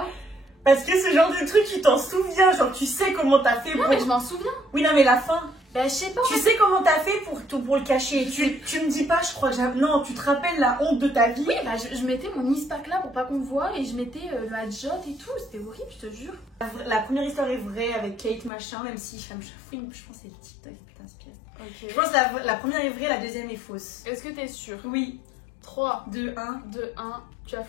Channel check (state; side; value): drops out; right; at 18.5 s